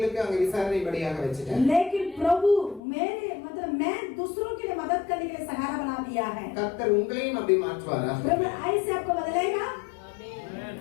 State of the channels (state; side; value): drops out; right; at 2.8 s